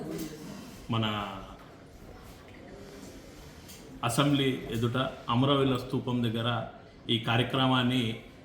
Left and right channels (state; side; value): identical; both; correlation 1.00